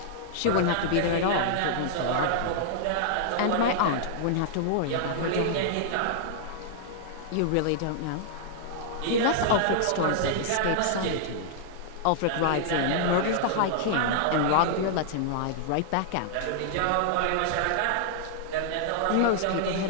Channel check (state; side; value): different; both; correlation -0.01